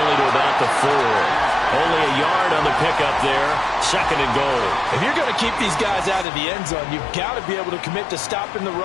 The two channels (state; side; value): drops out; right; at 6.2 s